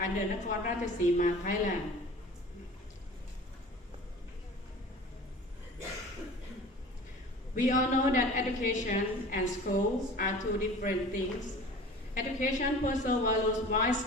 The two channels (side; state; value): both; normal; correlation 0.41